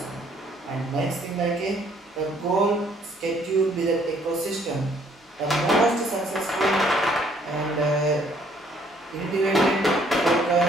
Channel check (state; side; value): normal; both; correlation 0.63